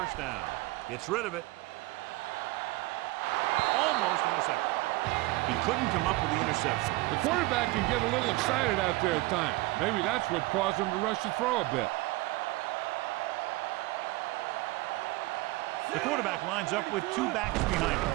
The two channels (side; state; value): left; quieter; 20.9 dB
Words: down. Gets rid of it. Almost intercepted. He couldn't come up with the interception. The quarterback can get a little excited out there at times. Maybe that's what caused him to rush the throw a bit. The quarterback lines up with 2 backs behind him.